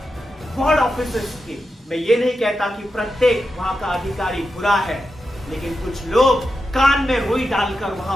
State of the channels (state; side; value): normal; both; correlation 0.89